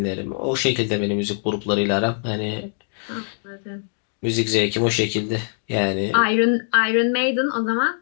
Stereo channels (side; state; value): right; silent; digital silence